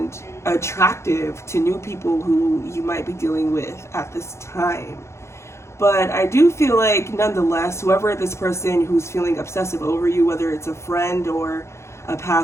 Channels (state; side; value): late; right; 0.13 ms